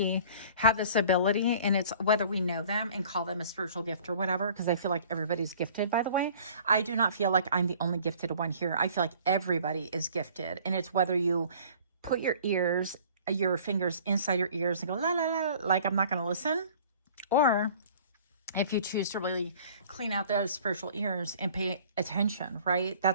have this ability, and it's whether we know them and call them a spiritual gift or whatever, because I feel like everybody's gifted, by the way. I do not feel like I'm the only gifted one here. I feel like everybody is gifted. And it's whether you put your fingers inside your ears and go, la, la, la, like I'm not going to listen. Or if you choose to really clean out those spiritual ears and pay attention, right?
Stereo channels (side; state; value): both; inverted; correlation -0.50